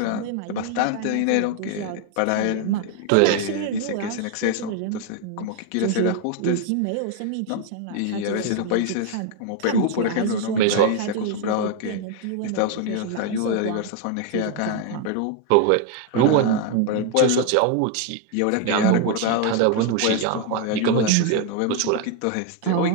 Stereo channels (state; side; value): different; both; correlation 0.01